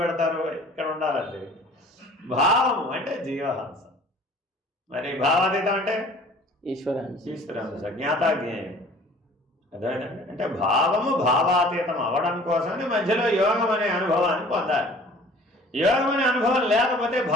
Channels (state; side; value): normal; both; correlation 0.49